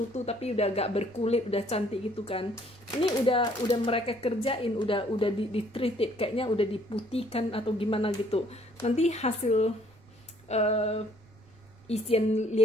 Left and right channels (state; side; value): noise; right; rumble, 28 dB below the sound